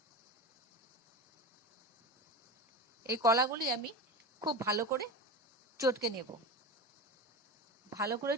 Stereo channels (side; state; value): both; normal; correlation 0.26